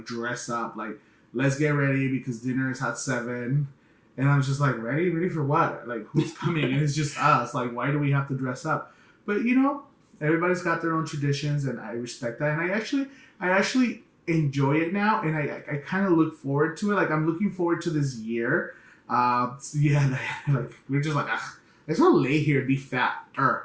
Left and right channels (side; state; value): both; identical; correlation 1.00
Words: dress up. Like, let's get ready because dinner is at 7. And I was just like, ready for what? Like, who's coming? And it's just us. Like, why do we have to dress up? But everybody's got their own traditions, and I respect that. And I actually enjoy it now, and I kind of look forward to it. Like, I'm looking forward to this year. So yeah, like, we're just like, I just want to lay here and be fat,